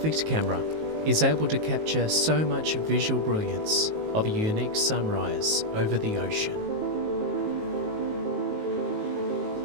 camera is able to capture so much visual brilliance of a unique sunrise over the ocean.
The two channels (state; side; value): late; left; 19 ms